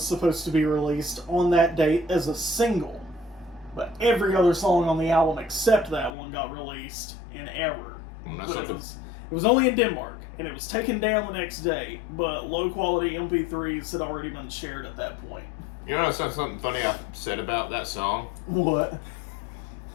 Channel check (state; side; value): drops out; right; at 6.1 s